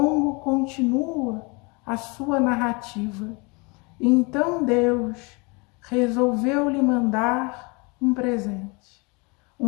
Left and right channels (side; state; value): right; quieter; 29.2 dB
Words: continua a sua narrativa. Então Deus resolveu lhe mandar um presente.